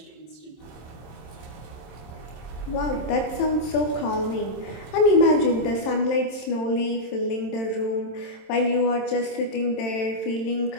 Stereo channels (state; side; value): late; right; 27 ms